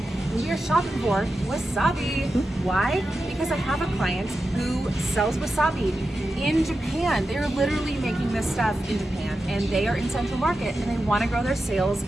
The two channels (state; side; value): normal; both; correlation 0.91